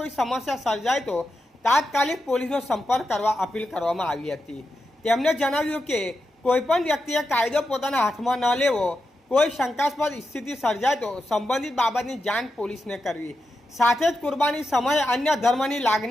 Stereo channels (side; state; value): both; normal; correlation 0.88